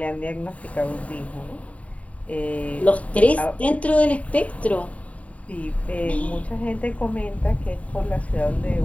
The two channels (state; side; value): late; right; 0.067 ms